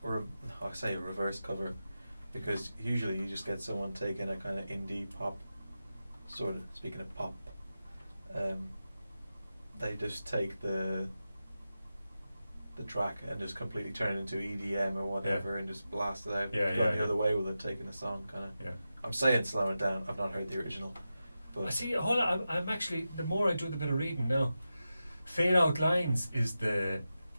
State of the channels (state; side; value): inverted; both; correlation -0.92